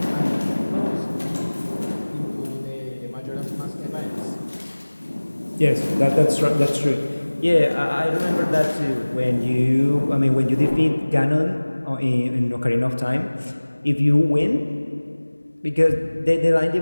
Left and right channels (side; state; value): both; inverted; correlation -1.00